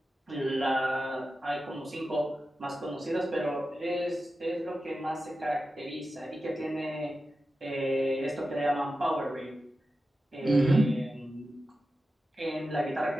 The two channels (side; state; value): both; normal; correlation 0.92